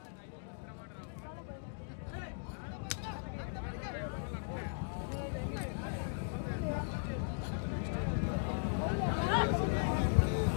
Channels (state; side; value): silent; right; digital silence